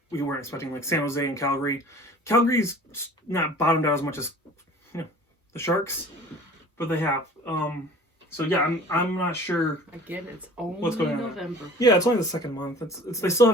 we weren't expecting, like San Jose and Calgary. Calgary's not bottomed out as much as the Sharks, but they have. So yeah, I'm not sure. Again, it's only What's going on? November. Yeah, it's only the second month. It's they still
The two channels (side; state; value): both; normal; correlation 0.45